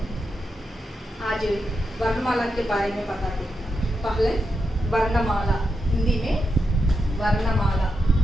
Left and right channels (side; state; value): both; normal; correlation 0.86